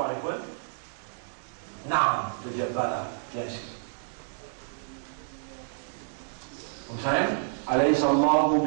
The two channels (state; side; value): silent; left; digital silence